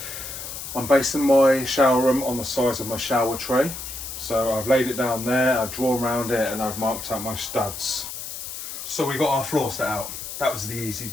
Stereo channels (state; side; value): noise; left; hiss, 8 dB below the sound